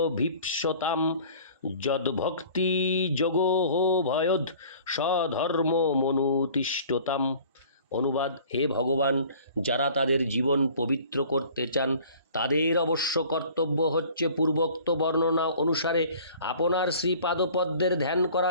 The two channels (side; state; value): both; inverted; correlation -0.49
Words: যদ্ভক্তিযোগোহ ভয়দ স্বধর্মমনুতিষ্ঠতাম। অনুবাদ, হে ভগবান, যারা তাদের জীবন পবিত্র করতে চান তাদের অবশ্য কর্তব্য হচ্ছে পূর্বোক্ত বর্ণনা অনুসারে আপনার শ্রীপাদপদ্মের ধ্যান